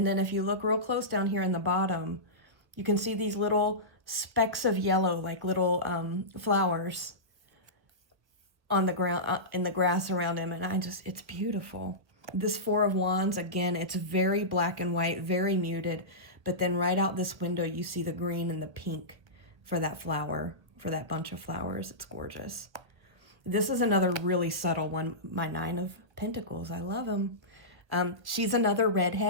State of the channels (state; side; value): late; left; 1.1 ms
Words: then if you look real close down here in the bottom, you can see these little specks of yellow, like little flowers on the ground, in the grass around him. And it's beautiful. This Four of Wands, again, it's very black and white, very muted. But then right out this window, you see the green and the pink for that flower, for that bunch of flowers. It's gorgeous. This is another really subtle one, my Nine of Pentacles. I love him. She's another